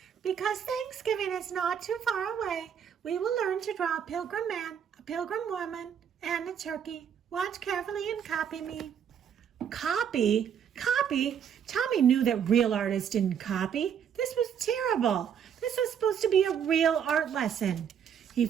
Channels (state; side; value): quieter; left; 8.2 dB